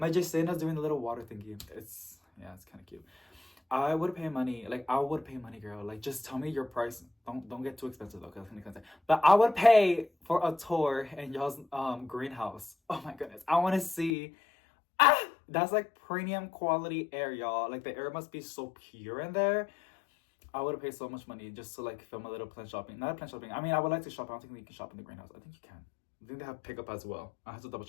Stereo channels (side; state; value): right; drops out; at 14.2 s